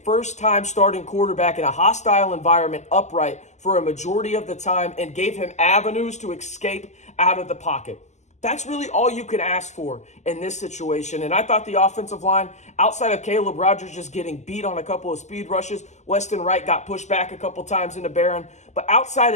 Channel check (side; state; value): right; late; 0.33 ms